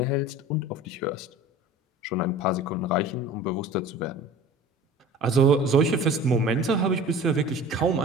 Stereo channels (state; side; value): normal; both; correlation 0.41